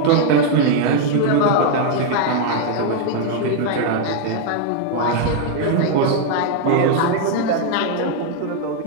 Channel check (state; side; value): different; both; correlation 0.00